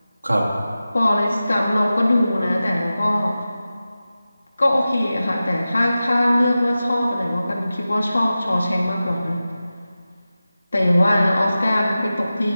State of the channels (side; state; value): both; inverted; correlation -0.95